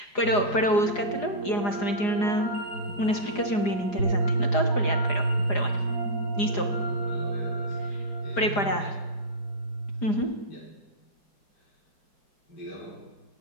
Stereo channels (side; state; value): right; late; 4.9 ms